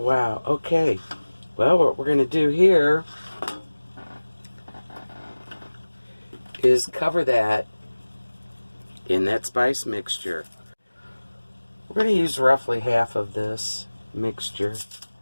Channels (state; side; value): inverted; both; correlation -1.00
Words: Okay. Well, what we're going to do here is cover that in that spice mixture. We're going to use roughly half of this mixture.